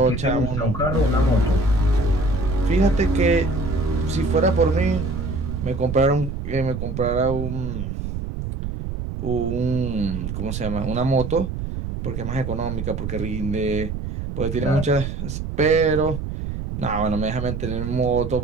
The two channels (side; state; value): right; noise; rumble, 5 dB below the sound